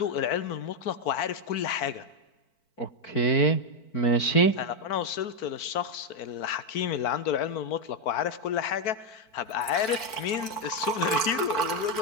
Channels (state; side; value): late; right; 4.5 ms